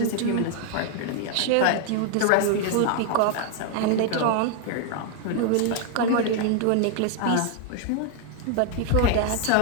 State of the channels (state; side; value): different; both; correlation 0.00